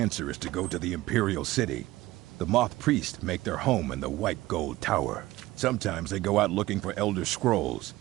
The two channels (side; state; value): left; quieter; 17.6 dB